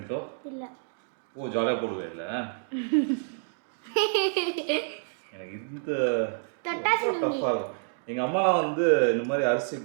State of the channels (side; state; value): left; silent; digital silence